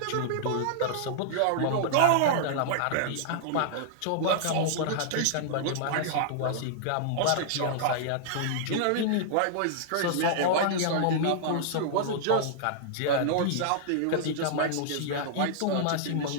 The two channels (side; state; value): both; different; correlation -0.01